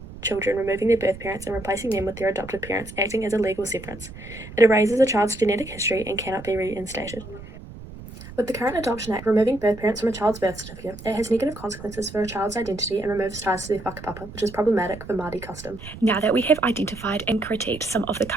children, removing their birth parents and replacing them with their adopted parents, acting as a legal severance. It erases a child's genetic history and cannot be reinstated. With the current Adoption Act removing birth parents from a child's birth certificate, it has negative consequences for a child's identity and removes ties to their whakapapa, which is problematic for Māori custom. Now that we have identified and critiqued some of the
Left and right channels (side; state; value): right; noise; rumble, 15 dB below the sound